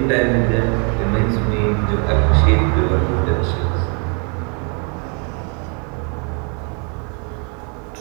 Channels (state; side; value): quieter; left; 37.2 dB